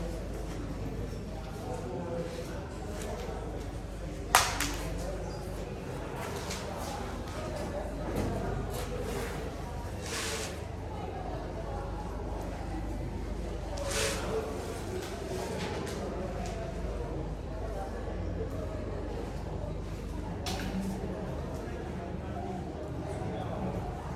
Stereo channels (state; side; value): identical; both; correlation 1.00